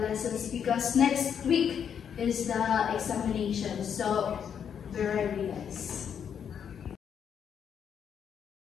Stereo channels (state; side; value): quieter; right; 7.9 dB